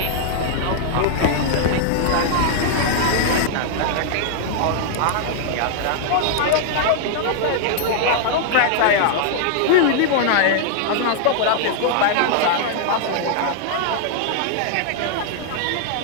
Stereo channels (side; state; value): both; different; correlation -0.01